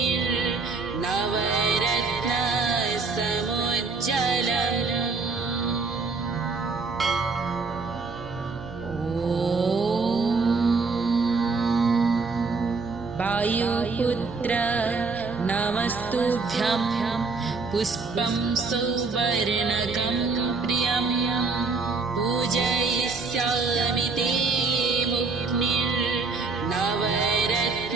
वायुपुत्र नमस्तुभ्यं पुष्पं सौवर्णकं प्रियं पूजयिष्यामि ते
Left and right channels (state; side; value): quieter; left; 4.2 dB